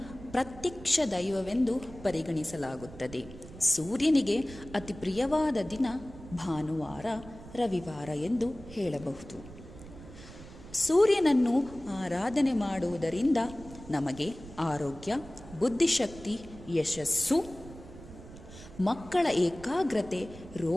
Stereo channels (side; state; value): right; noise; rumble, 16 dB below the sound